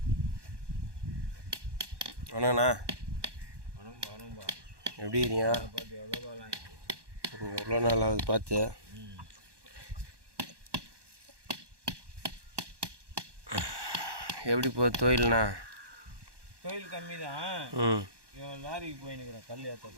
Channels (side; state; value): left; late; 1.2 ms